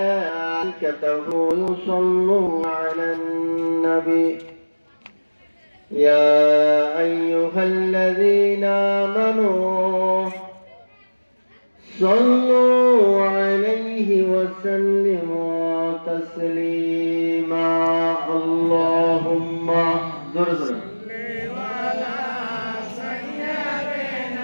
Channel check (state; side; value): inverted; both; correlation -1.00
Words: يصلون على النبي يا أيها الذين آمنوا صلوا عليه وسلموا تسليما اللهم زر